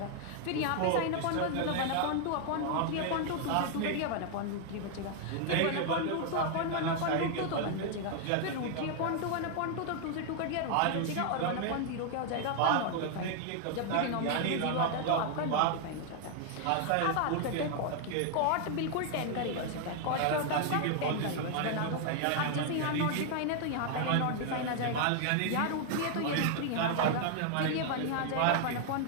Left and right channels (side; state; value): both; different; correlation 0.00